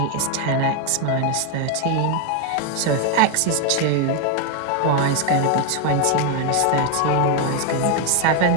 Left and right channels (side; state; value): both; different; correlation 0.01